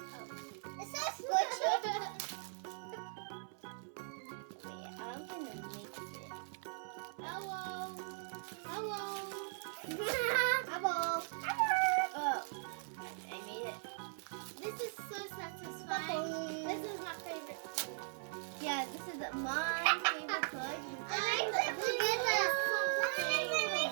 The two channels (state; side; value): silent; left; 51 dB below the other